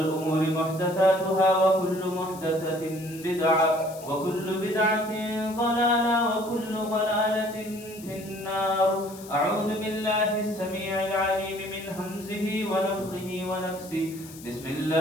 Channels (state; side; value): noise; left; hiss, 18 dB below the sound